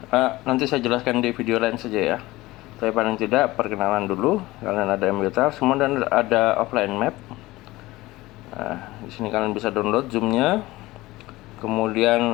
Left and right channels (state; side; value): quieter; right; 19.0 dB